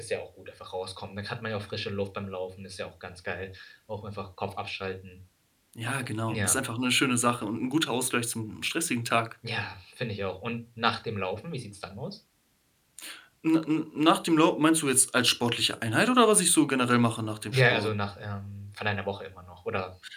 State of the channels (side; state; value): both; identical; correlation 1.00